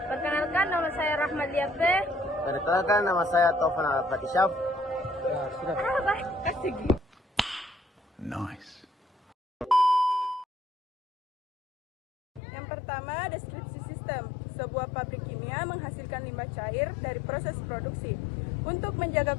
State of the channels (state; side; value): drops out; right; at 12.4 s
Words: Perkenalkan nama saya Rahmat Liafe. Perkenalkan nama saya Taufan Al-Fatishaf. Ya, sudah. Nice. Yang pertama, deskripsi sistem. Sebuah pabrik kimia menghasilkan limbah cair dari proses produksi. Untuk